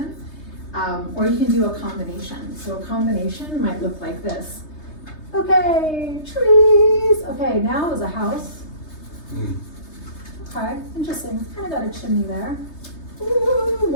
Or you can do a combination. So a combination might look like this. Okay, trees. Okay, now is a house. Okay, interesting. Kind of got a chimney there. Ooh,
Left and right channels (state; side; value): late; right; 3.3 ms